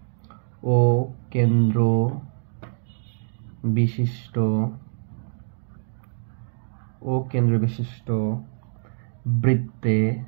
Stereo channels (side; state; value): left; silent; digital silence